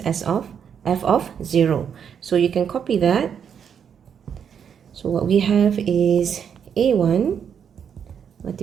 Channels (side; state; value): left; quieter; 7.7 dB